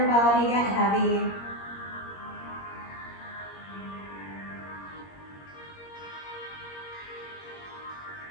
body get heavy.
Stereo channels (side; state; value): right; late; 21 ms